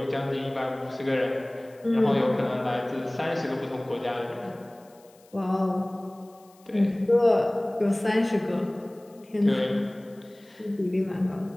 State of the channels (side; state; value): left; noise; hiss, 30 dB below the sound